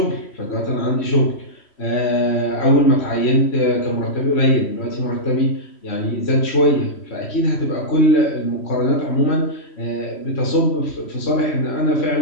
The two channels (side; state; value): right; late; 3.1 ms